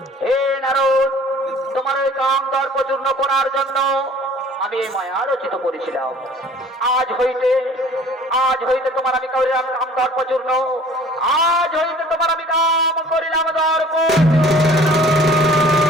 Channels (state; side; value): normal; both; correlation 0.51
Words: হে নারদ, তোমার ওই কাম দর্প চূর্ণ করার জন্য আমি এই মায়া রচিত করেছিলাম। আজ হইতে তোমার আমি করিলাম কাম দর্প চূর্ণ, আজ হইতে তোমার আমি কাম করিলাম দর্প।